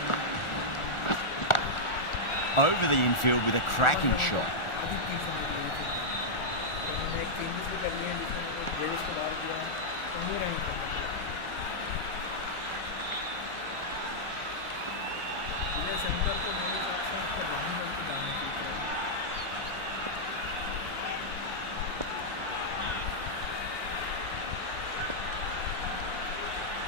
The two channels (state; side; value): late; right; 1.4 ms